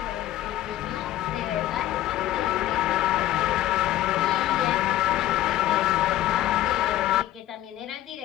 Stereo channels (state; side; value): quieter; right; 13.9 dB